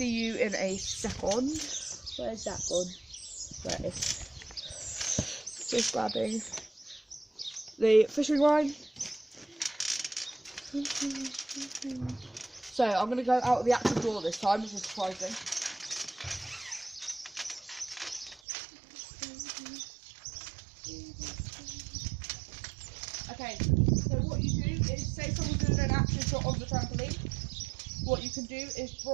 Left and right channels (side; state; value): left; drops out; at 18.4 s